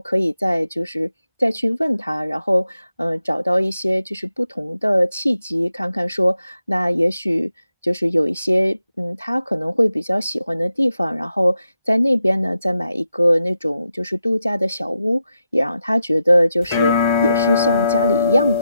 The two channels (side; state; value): both; inverted; correlation -0.87